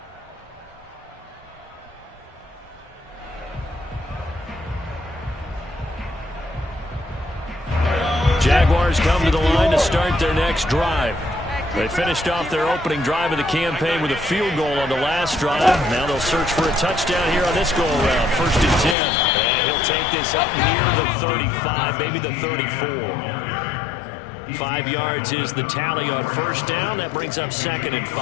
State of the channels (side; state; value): right; drops out; at 18.9 s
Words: Jaguars come to the line to start their next drive. They finished off their opening drive of the campaign with a field goal on the last drive. Now they'll search for a touchdown here on this go-around. 1st and 10. And he'll take this up near the 35, maybe the 34. 5 yards is the tally on 1st down. That brings up 2nd and